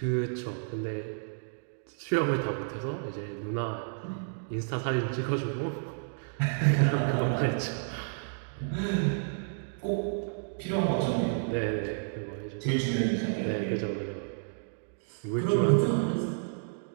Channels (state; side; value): silent; left; digital silence